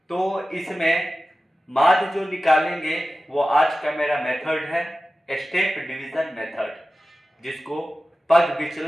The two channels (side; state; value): both; normal; correlation 0.95